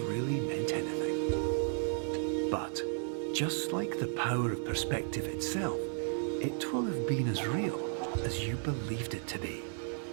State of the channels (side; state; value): left; silent; 55 dB below the other